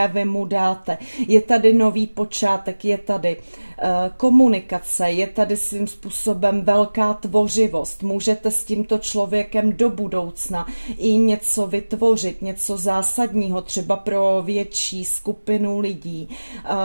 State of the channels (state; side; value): inverted; both; correlation -1.00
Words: vy mu dáte. Je tady nový počátek, je tady komunikace, je tady svým způsobem velká tvořivost. Můžete s tímto člověkem do budoucna i něco vytvořit, něco zásadního, třeba pro větší skupinu lidí.